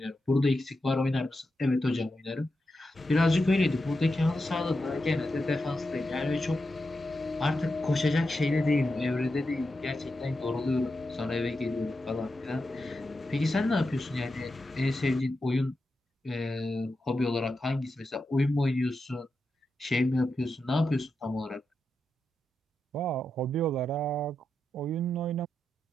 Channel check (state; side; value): normal; both; correlation 0.88